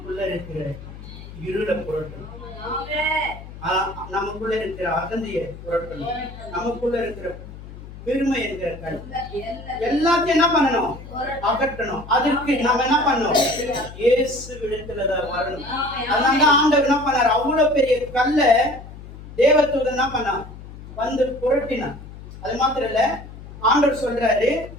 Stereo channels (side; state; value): left; noise; hum, 15 dB below the sound